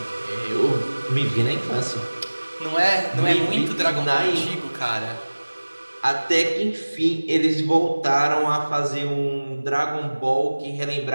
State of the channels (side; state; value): both; inverted; correlation -1.00